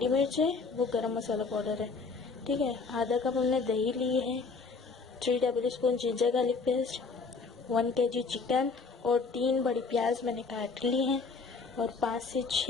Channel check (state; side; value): quieter; right; 4.6 dB